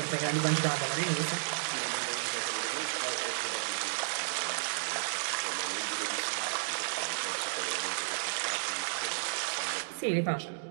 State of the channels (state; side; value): silent; left; digital silence